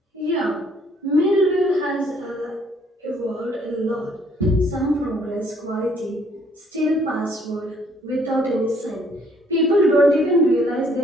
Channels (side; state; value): both; normal; correlation 0.64